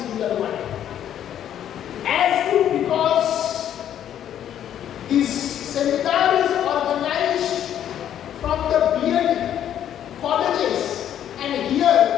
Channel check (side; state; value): right; quieter; 10.3 dB